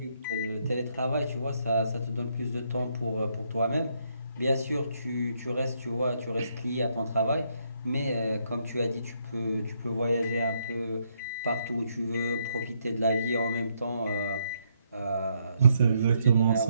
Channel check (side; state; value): both; inverted; correlation -0.74